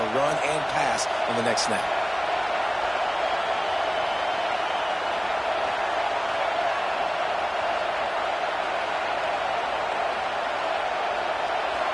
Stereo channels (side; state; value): both; identical; correlation 1.00